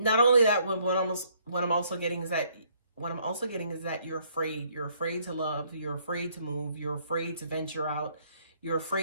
only that, what I'm also getting is that you're afraid. You're afraid to love, you're afraid to move, you're afraid to venture out, you're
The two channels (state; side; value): inverted; both; correlation -0.66